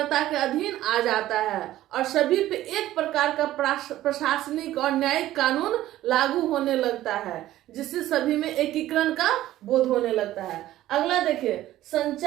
के अधीन आ जाता है और सभी पे एक प्रकार का प्रशासनिक और न्यायिक कानून लागू होने लगता है, जिससे सभी में एकीकरण का बोध होने लगता है। अगला देखिए,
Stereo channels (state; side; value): quieter; left; 14.4 dB